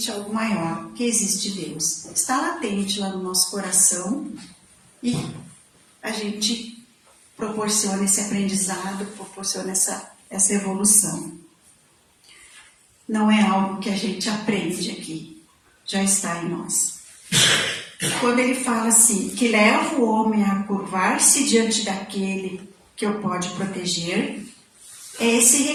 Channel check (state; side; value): identical; both; correlation 1.00